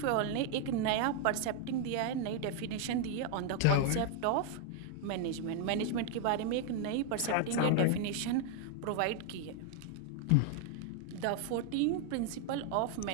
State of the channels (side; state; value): both; different; correlation 0.00